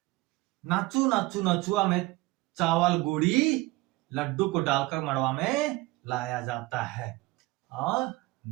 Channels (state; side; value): quieter; left; 20.8 dB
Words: नाचू नाचू नचुआ में चावल गुड़ी लड्डू को डालकर मड़वा में लाया जाता है। और